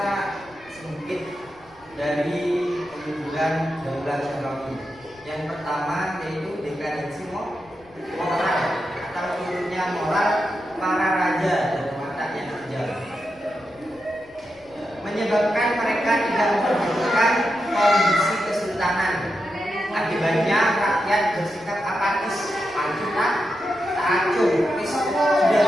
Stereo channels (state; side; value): noise; left; rumble, 28 dB below the sound